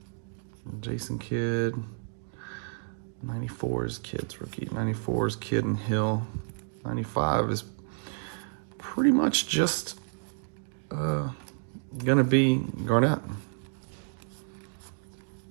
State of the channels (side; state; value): left; silent; digital silence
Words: Jason Kidd. 94 is Kidd's rookie. 94 is Kidd and Hill. 95 is pretty much just gonna be Garnett.